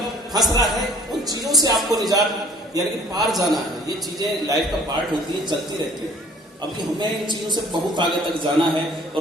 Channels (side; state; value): both; normal; correlation 0.53